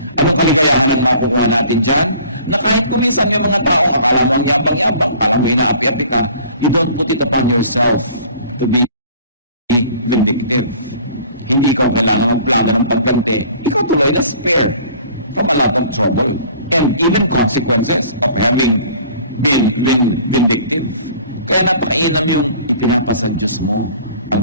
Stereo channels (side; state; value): both; inverted; correlation -0.50